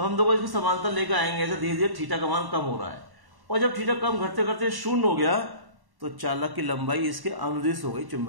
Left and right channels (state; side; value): late; left; 1.1 ms